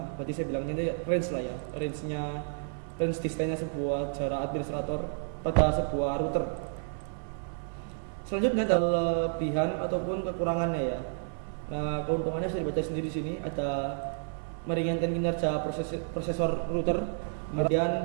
Berarti saya bilangnya ini range lah ya, range distance-nya sebuah jarak administrator pada sebuah router. Selanjutnya ada kelebihan ataupun kekurangannya ya. Nah, keuntungannya bisa dibaca sendiri di sini. Ada meringankan kinerja prosesor router. Kemudian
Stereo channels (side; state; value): left; silent; 57 dB below the other